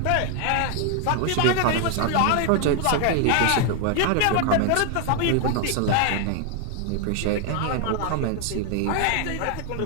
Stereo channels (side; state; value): both; different; correlation 0.00